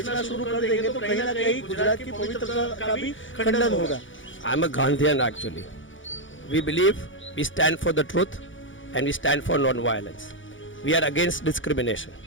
शुरू कर देंगे तो कहीं ना कहीं गुजरात की पवित्रता का भी खंडन होगा। I am a Gandhian actually. We believe we stand for the truth and we stand for non-violence. We are against discrimination.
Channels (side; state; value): right; late; 0.56 ms